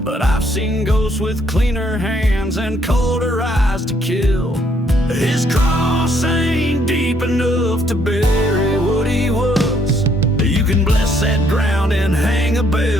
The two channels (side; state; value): both; normal; correlation 0.69